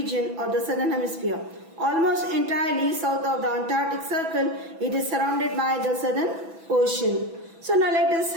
of the southern hemisphere. Almost entirely south of the Antarctic Circle, it is surrounded by the Southern Ocean. So now let us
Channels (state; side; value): late; left; 6.1 ms